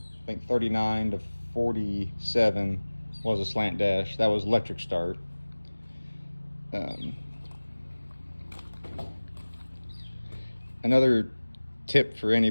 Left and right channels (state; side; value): inverted; both; correlation -1.00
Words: I think 39 to 47 was a slant dash. That was electric start. Another tip for